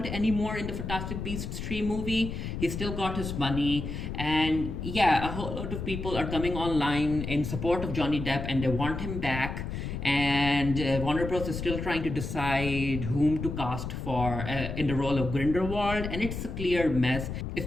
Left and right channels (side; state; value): left; noise; rumble, 5 dB below the sound